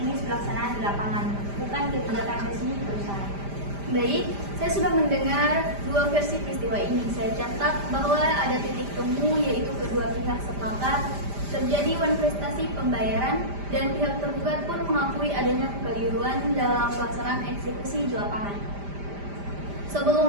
pelaksanaan di lapangan, bukan kebijakan resmi perusahaan. Baik, saya sudah mendengar dua versi peristiwa ini. Saya catat bahwa ada titik temu, yaitu kedua pihak sepakat terjadi manifestasi pembayaran dan pihak tergugat pun mengakui adanya kekeliruan dalam pelaksanaan eksekusi di lapangan.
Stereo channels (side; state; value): left; late; 5.0 ms